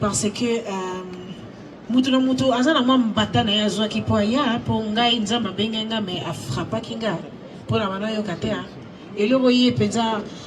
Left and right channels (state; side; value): identical; both; correlation 1.00